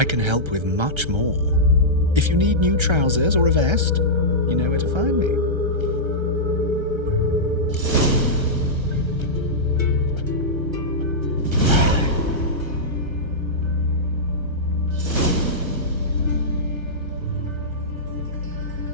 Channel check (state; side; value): late; left; 1.3 ms